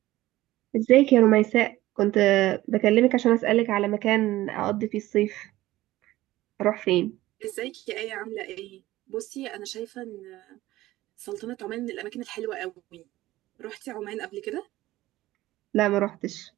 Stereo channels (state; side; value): quieter; left; 16.6 dB